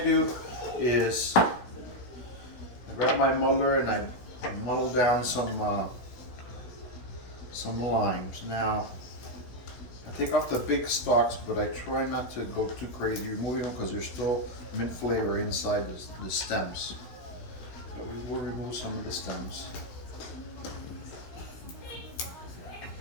is I grab my muddler and I muddle down some limes. Now, I take off the big stalks, but I try not to go too crazy removing them because there's still mint flavor inside the stems. But we will remove some of the stems.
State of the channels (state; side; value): late; right; 16 ms